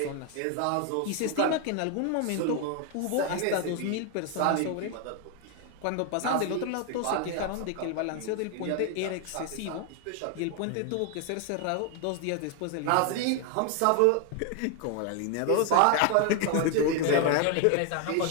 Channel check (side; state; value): both; different; correlation 0.01